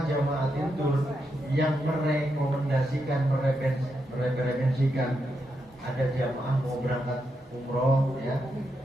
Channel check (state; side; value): normal; both; correlation 0.84